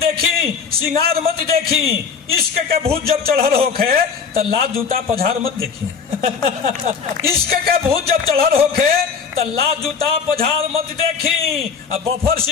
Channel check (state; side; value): quieter; right; 6.0 dB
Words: सिंगार मत देखी, इश्क के भूत जब चढ़ल होखे तो लात जूता पझार मत देखी। इश्क के भूत जब चढ़ल होखे तो लात जूता पझार मत देखी। अब बफर